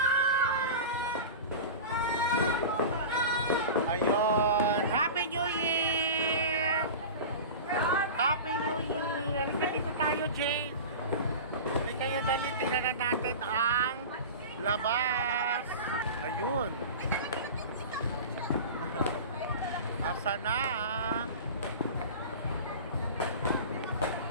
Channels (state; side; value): inverted; both; correlation -0.31